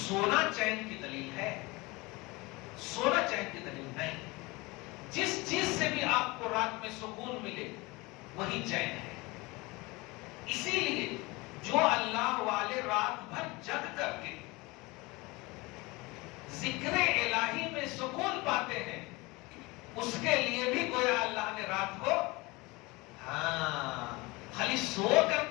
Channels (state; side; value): quieter; right; 23.7 dB